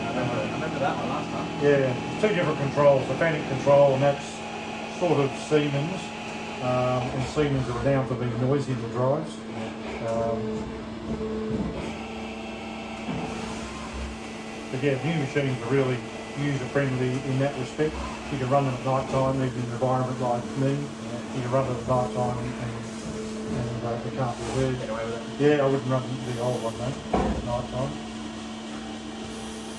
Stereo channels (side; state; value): left; noise; rumble, 28 dB below the sound